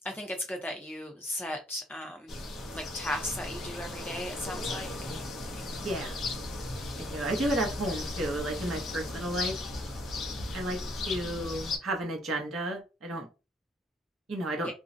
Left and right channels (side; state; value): both; normal; correlation 0.66